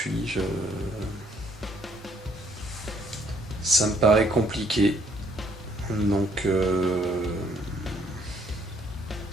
Ça me paraît compliqué. Donc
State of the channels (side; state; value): both; normal; correlation 0.65